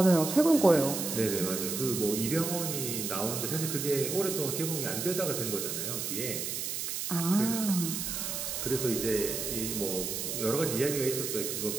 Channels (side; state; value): right; noise; hiss, 3 dB below the sound